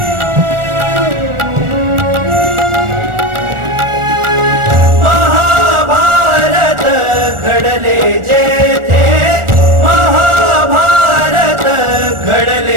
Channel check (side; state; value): left; late; 1.4 ms